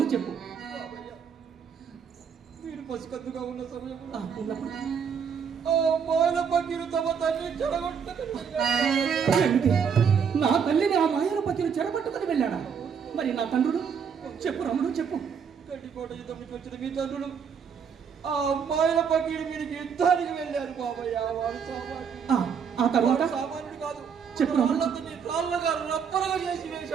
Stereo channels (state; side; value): quieter; left; 6.8 dB